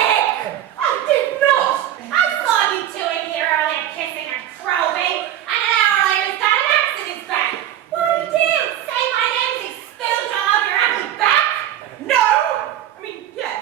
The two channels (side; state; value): left; quieter; 11.7 dB